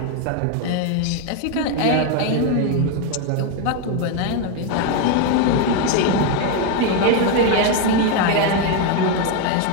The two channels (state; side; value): different; both; correlation 0.01